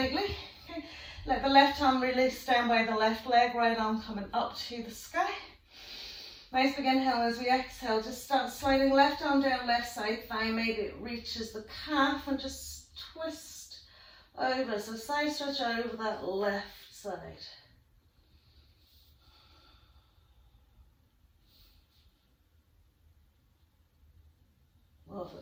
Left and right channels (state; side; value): identical; both; correlation 1.00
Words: Okay, let the left arm release down by the left leg, right arm coming up to the sky. Nice big inhale. As we exhale, just start sliding left arm down, left side thigh. Maybe it reaches the calf and just twist over. So side stretch over that left side. Lovely.